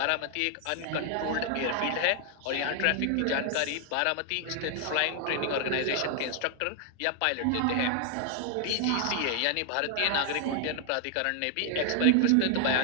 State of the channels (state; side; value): different; both; correlation 0.00